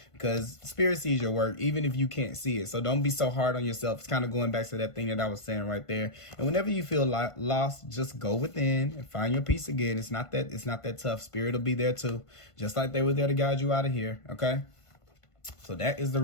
Because spirit sees your work, even if you can't see it. So don't be so hard on yourself. It's kind of going back to that thing that I was saying right there. And whenever you feel lost, just go within and find your peace again. It's not that tough. Spirit will be there too, just like they were there to guide you out of here, okay? So that is the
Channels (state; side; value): late; right; 1.5 ms